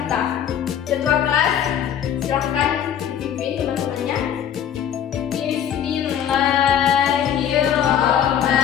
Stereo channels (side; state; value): right; quieter; 9.4 dB